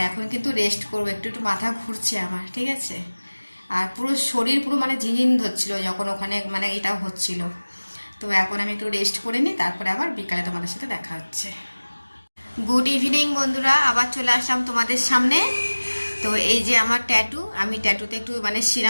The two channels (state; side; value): inverted; both; correlation -1.00